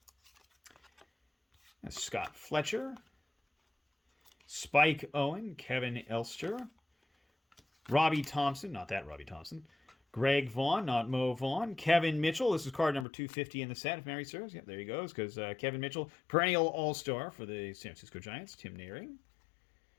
Scott Fletcher, Spike Owen, Kevin Elster, Robbie Thompson, not that Robbie Thompson, Greg Vaughn, not Mo Vaughn, Kevin Mitchell. This is card number 250 in the set, if memory serves. Yep, there he goes, because Kevin Mitchell, perennial all-star for the San Francisco Giants. Tim Naring,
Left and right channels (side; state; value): right; drops out; at 13.1 s